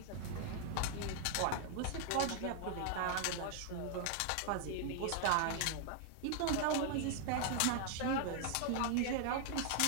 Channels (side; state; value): both; different; correlation 0.00